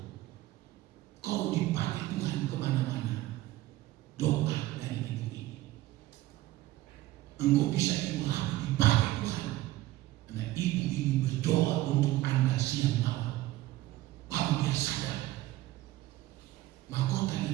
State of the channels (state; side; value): quieter; left; 16.6 dB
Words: kau dipakai Tuhan kemana-mana. Doa dari ibu ini, engkau bisa dipakai Tuhan. Karena ibu ini berdoa untuk Anda siang malam. Baru dia sadar, mahkota